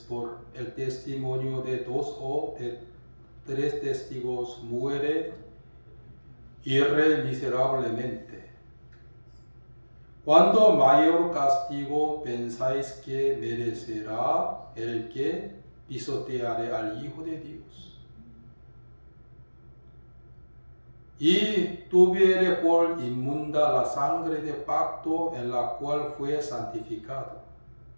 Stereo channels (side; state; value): both; inverted; correlation -1.00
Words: por el testimonio de 2 o de 3 testigos muere irremiseriablemente. ¿Cuánto mayor castigo pensáis que merecerá el que pisoteare al Hijo de Dios? Y tuviere por inmunda la sangre de pacto en la cual fue santificado,